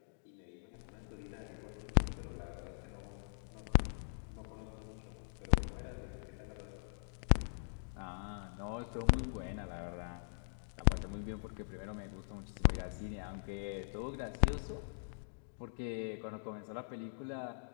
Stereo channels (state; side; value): silent; right; digital silence